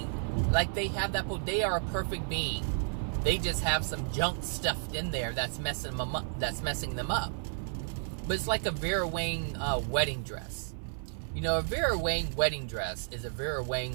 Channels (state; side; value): silent; left; 56 dB below the other